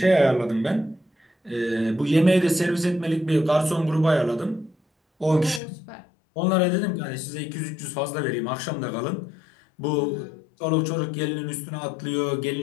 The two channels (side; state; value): right; drops out; at 5.6 s